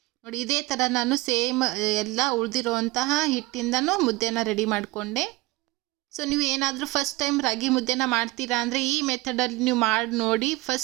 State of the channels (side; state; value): left; quieter; 21.3 dB